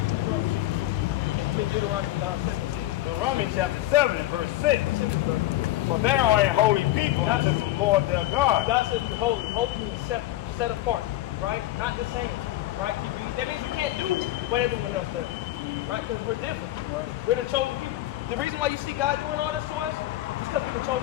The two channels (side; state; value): right; quieter; 15.6 dB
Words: Deuteronomy 17. Romans chapter 7 and verse 6. For they are a holy people unto the Lord their God. God says we're holy. Holy means set apart, right? Not the same, right? That means we can't do what everyone else does, right? Because we're different. Right. We're the chosen people. The reason why you see God doing all this to us is because we're the